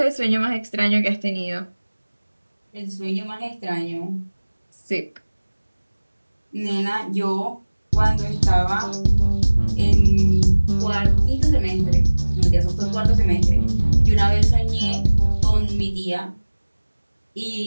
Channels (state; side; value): inverted; both; correlation -1.00